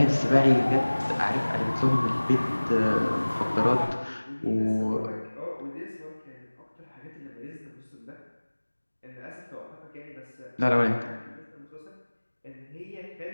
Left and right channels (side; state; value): both; inverted; correlation -1.00